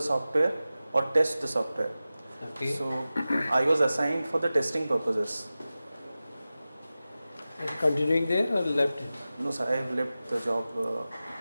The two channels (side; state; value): both; inverted; correlation -0.95